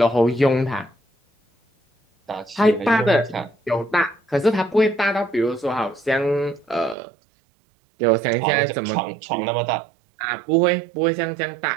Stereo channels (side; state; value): left; drops out; at 7.0 s